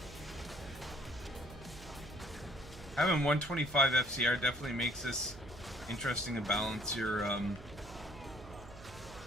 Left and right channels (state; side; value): noise; right; hum, 16 dB below the sound